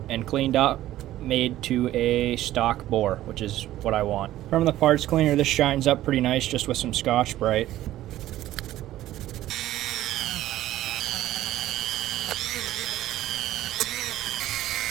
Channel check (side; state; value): left; quieter; 14.2 dB